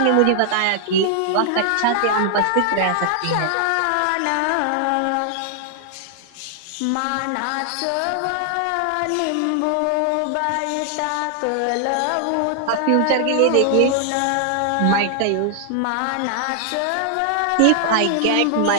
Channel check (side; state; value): both; different; correlation 0.00